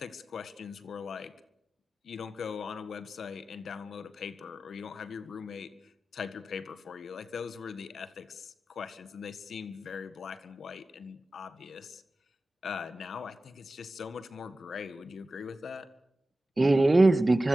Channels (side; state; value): both; normal; correlation 0.94